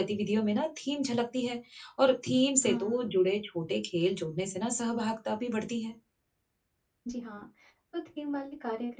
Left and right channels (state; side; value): identical; both; correlation 1.00